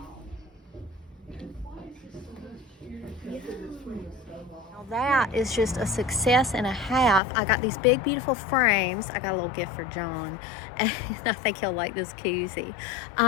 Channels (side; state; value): right; drops out; at 7.2 s